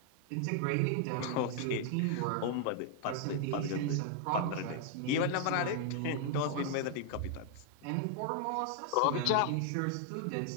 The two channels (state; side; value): different; both; correlation 0.00